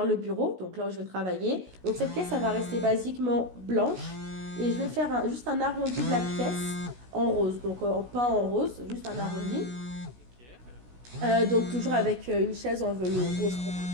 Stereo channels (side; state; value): left; late; 16 ms